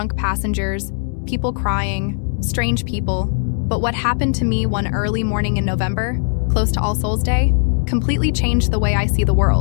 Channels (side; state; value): right; silent; 67 dB below the other